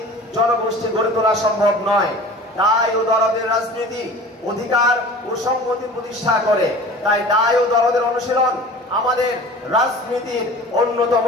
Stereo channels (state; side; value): normal; both; correlation 0.41